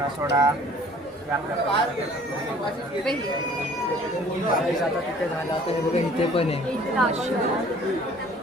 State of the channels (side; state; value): both; normal; correlation 0.53